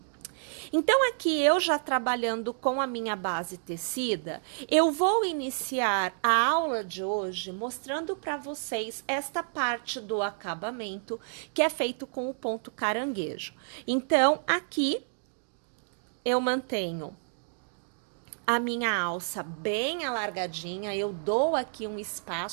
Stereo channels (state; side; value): silent; left; digital silence